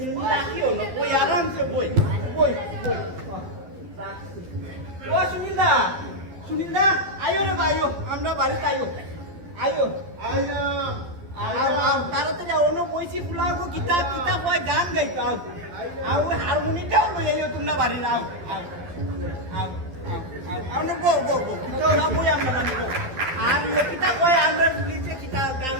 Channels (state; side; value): late; left; 12 ms